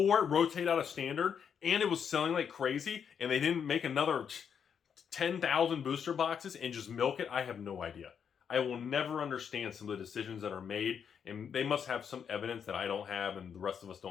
it rotated out of standard and it was selling like crazy and they didn't make another 10,000 booster boxes and just milk it? I have no idea. I will never understand some of the decisions that are made, and they must have some evidence that I don't have and the rest of us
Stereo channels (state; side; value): quieter; right; 7.4 dB